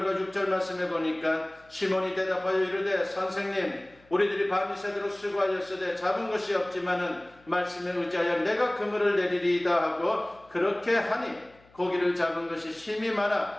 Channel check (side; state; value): left; noise; hum, 29 dB below the sound